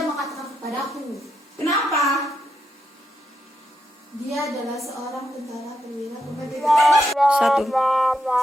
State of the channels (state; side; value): normal; both; correlation 0.82